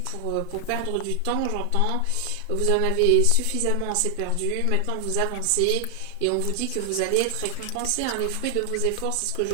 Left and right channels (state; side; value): different; both; correlation 0.00